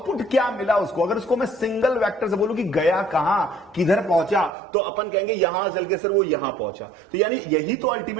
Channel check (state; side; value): drops out; left; at 4.5 s